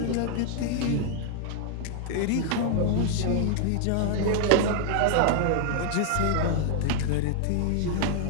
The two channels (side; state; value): both; different; correlation 0.00